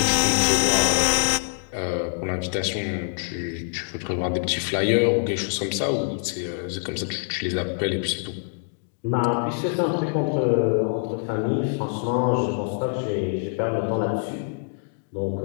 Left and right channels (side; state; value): right; silent; digital silence